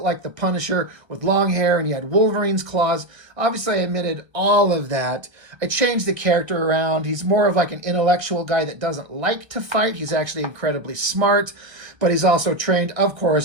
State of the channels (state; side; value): late; left; 1.3 ms